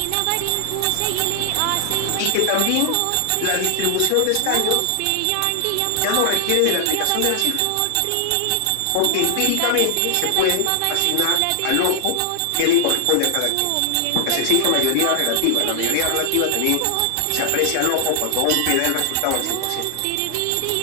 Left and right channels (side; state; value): both; different; correlation 0.00